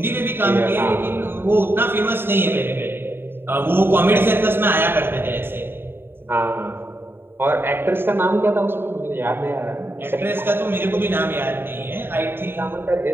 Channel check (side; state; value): left; late; 0.11 ms